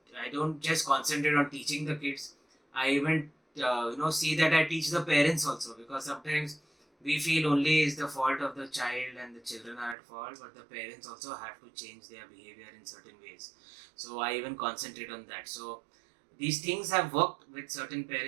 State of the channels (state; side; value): drops out; left; at 10.0 s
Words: just concentrate on teaching the kids. I even see that I teach the parents also, because sometimes we feel only is the fault of the child and the children are at fault, but the parents also have to change their behavior in certain ways. So I even concentrate on that. So these things have worked with certain